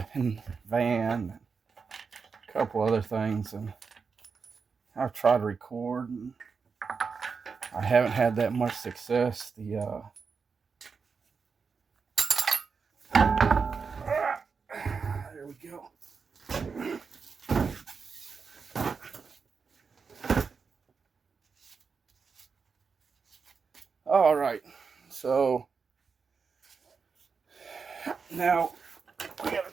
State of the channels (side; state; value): left; quieter; 5.3 dB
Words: and van and a couple other things, and I've tried to record and I haven't had that much success. There we go. All right, so now we got to